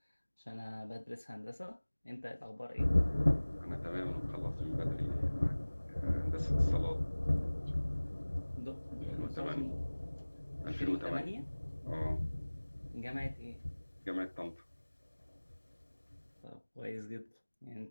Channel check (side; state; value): both; inverted; correlation -1.00